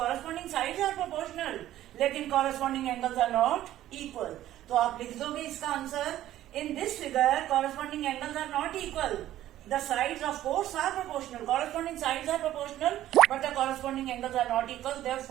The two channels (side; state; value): left; quieter; 13.4 dB